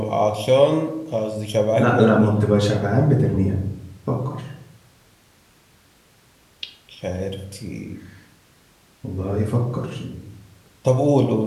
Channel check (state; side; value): identical; both; correlation 1.00